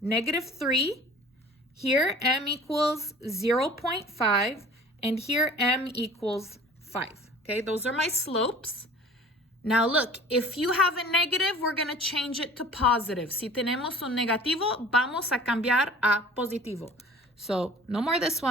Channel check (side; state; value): both; normal; correlation 0.46